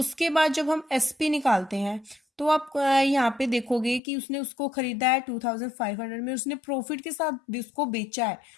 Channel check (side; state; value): right; drops out; at 4.0 s